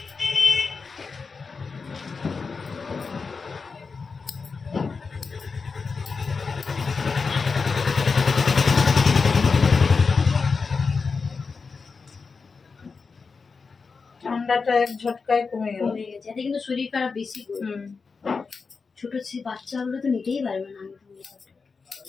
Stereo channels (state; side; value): quieter; right; 4.8 dB